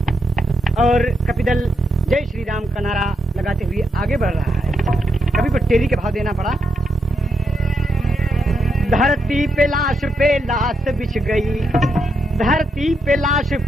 और कपिदल जय श्री राम का नारा लगाते हुए आगे बढ़ रहा है। कभी को टेरी के भाव देना पड़ा। धरती पे लाश बिछ गई, धरती पे लाश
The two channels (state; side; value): normal; both; correlation 0.80